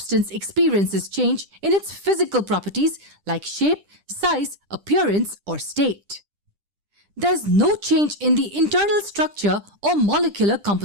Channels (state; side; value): late; left; 10 ms